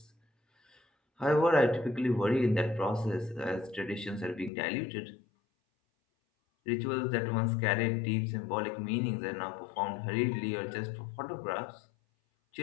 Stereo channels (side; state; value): right; drops out; at 4.5 s